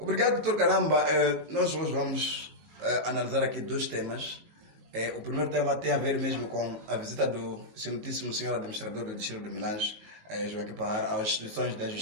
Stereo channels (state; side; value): late; left; 19 ms